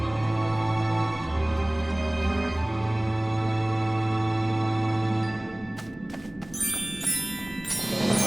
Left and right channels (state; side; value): noise; right; hum, 23 dB below the sound